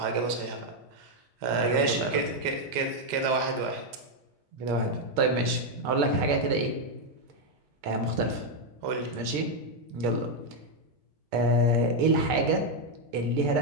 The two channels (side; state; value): both; normal; correlation 0.02